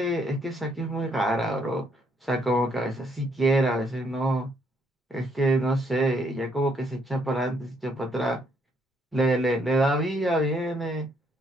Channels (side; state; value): both; normal; correlation 0.71